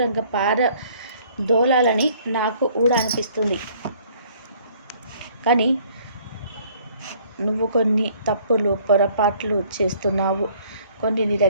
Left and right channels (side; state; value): both; inverted; correlation -0.58